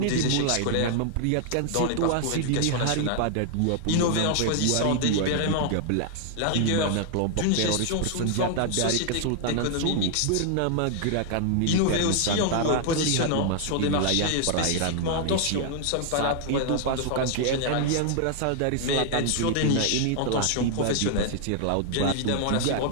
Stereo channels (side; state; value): both; different; correlation 0.00